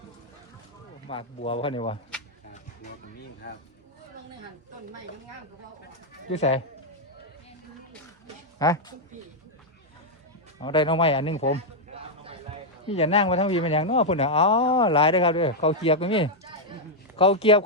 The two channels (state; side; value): normal; both; correlation -0.02